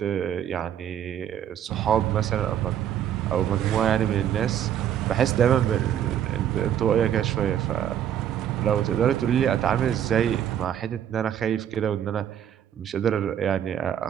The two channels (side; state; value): left; quieter; 10.0 dB